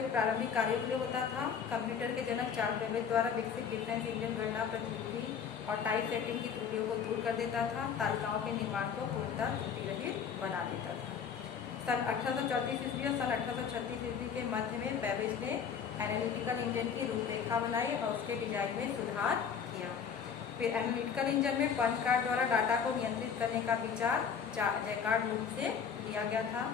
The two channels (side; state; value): right; quieter; 7.0 dB